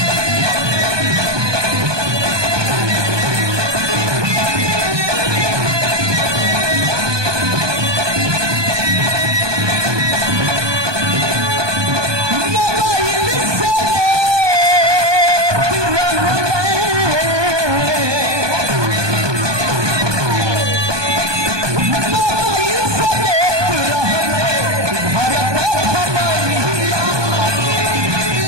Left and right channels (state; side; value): late; left; 1.2 ms